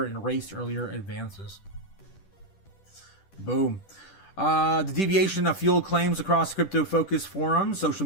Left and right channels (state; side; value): late; right; 10 ms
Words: and erased earlier advances. Boom. The deviation of fueled claims across crypto-focused forums, social